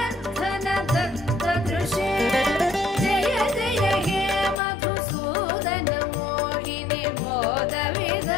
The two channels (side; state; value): right; drops out; at 4.6 s